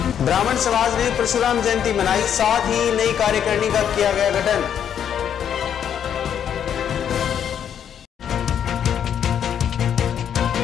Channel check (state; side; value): quieter; right; 8.9 dB